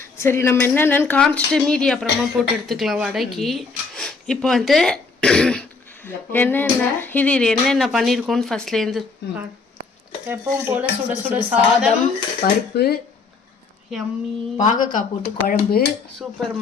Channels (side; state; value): right; quieter; 4.4 dB